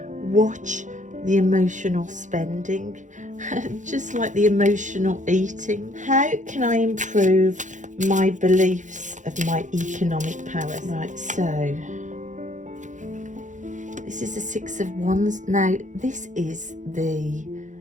Watch the emotional spending. just like the emotional eating. How can I improve my beliefs of my economic power? Right, so this is the Six of Wands. Now this is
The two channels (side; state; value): left; late; 0.36 ms